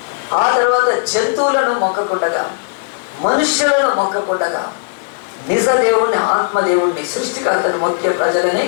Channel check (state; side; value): silent; right; digital silence